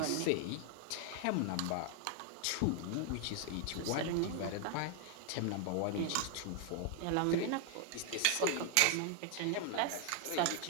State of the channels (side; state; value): both; different; correlation 0.00